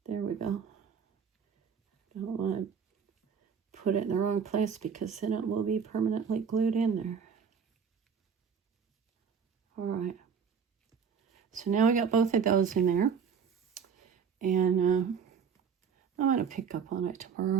There we go. Don't want to put it in the wrong place because then it will be permanently glued in there. All right. So now we got both of those in there. And I'm going to pick up on it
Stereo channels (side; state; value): left; quieter; 6.7 dB